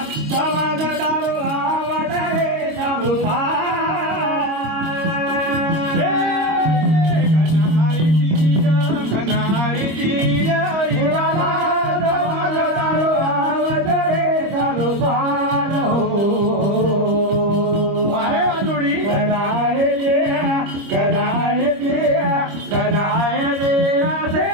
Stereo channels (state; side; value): late; left; 25 ms